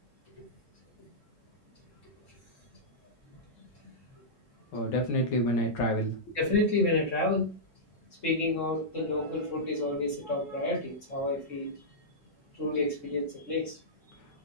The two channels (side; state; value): right; late; 3.7 ms